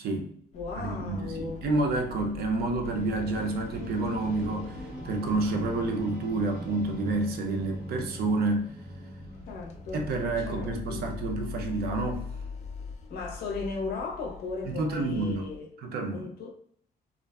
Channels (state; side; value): normal; both; correlation 0.44